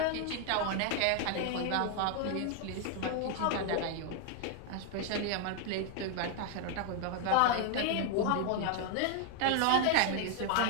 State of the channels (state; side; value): different; both; correlation 0.00